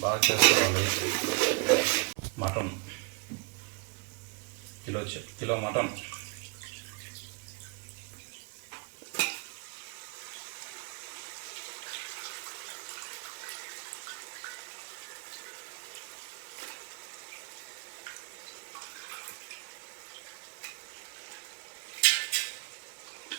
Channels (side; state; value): left; quieter; 33.9 dB